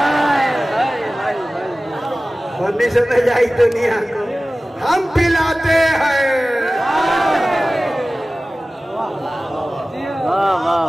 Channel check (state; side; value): normal; both; correlation 0.97